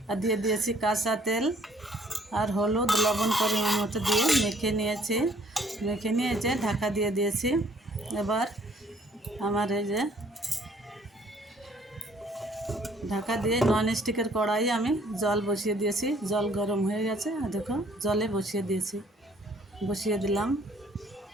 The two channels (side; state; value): both; normal; correlation 0.60